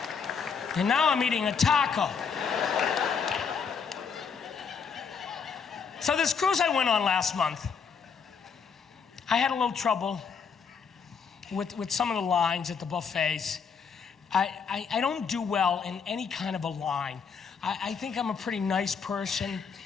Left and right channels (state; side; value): quieter; right; 6.1 dB